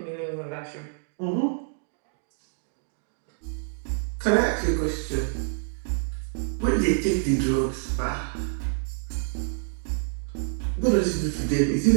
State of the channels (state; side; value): silent; left; digital silence